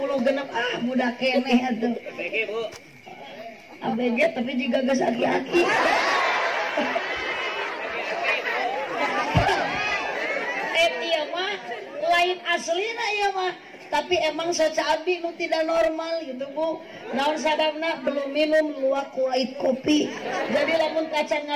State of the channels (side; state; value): both; identical; correlation 1.00